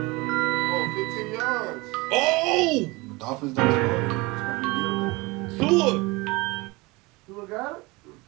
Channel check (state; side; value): quieter; left; 23.9 dB